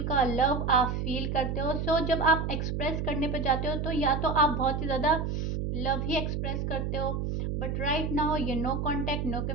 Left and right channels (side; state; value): right; noise; hum, 1 dB below the sound